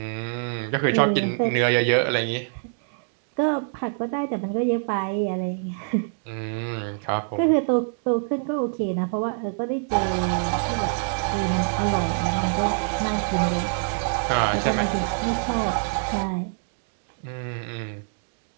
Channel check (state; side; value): silent; left; 62 dB below the other